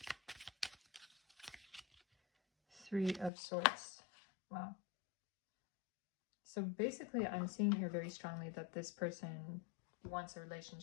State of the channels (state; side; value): drops out; right; at 3.3 s